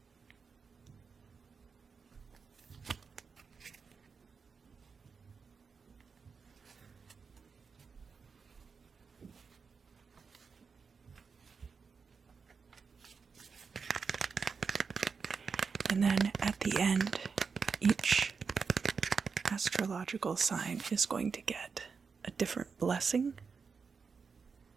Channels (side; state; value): left; quieter; 5.4 dB